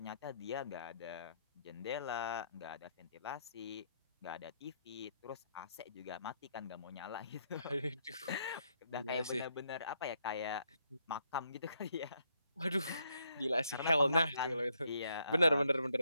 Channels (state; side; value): inverted; both; correlation -0.74